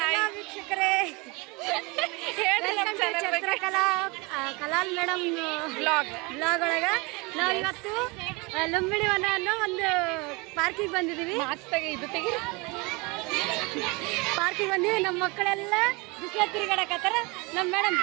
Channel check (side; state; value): left; quieter; 27.0 dB